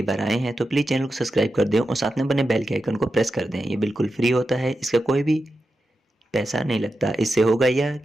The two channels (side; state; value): both; normal; correlation 0.90